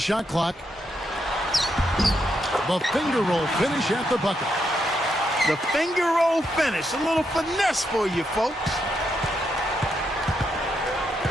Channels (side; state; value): both; normal; correlation 0.80